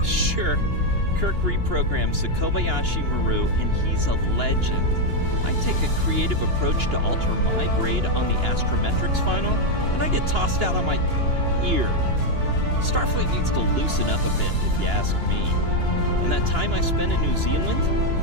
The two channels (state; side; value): late; left; 2.9 ms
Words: Sure, Kirk reprograms the Kobayashi Maru, and he's a legend. I take a creative approach to alter my grade on the astrometrics final, and I get tossed out on my ear. Starfleet needs to loosen up a bit, if you ask me. And that time I spent in New Zealand?